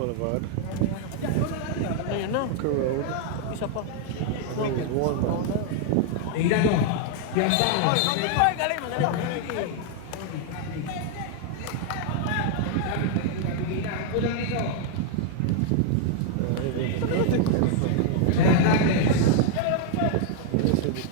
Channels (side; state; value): both; different; correlation 0.00